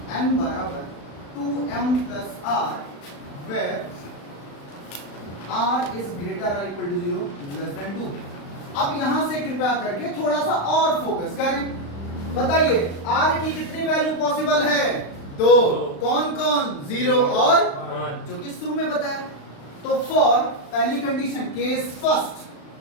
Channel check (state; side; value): late; right; 35 ms